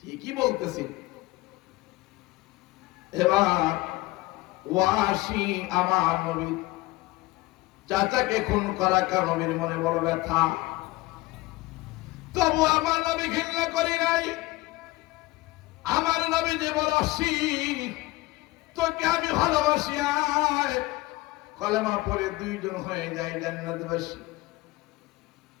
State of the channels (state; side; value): quieter; right; 20.0 dB